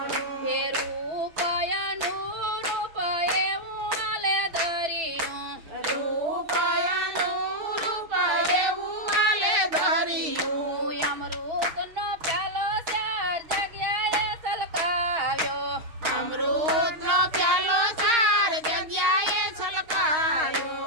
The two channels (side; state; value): left; late; 6.5 ms